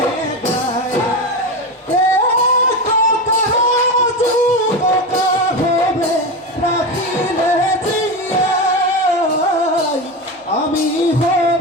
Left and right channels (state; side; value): normal; both; correlation 0.19